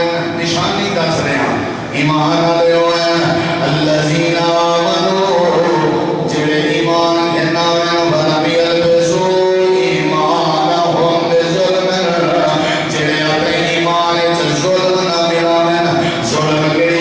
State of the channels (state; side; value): identical; both; correlation 1.00